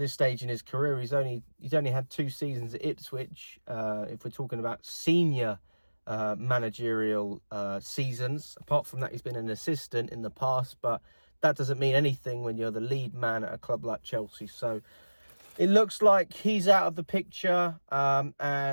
stage in his career. He's only had 2 seasons at Ipswich. If we're talking about senior managerial seasons, apart from that, he's been an assistant in the past, but that doesn't mean anything when you're the lead man at a club like Chelsea. So it looks like he's out of the picture,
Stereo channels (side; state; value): both; inverted; correlation -1.00